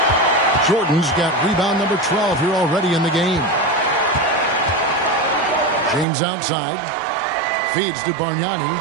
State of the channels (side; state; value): left; drops out; at 6.1 s